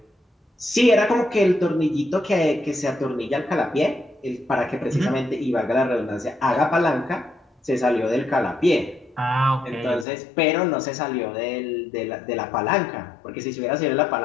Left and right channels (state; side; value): drops out; right; at 10.1 s